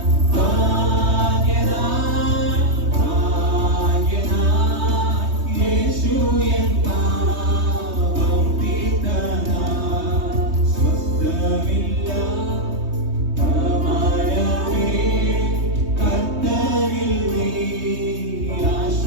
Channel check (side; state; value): left; late; 3.2 ms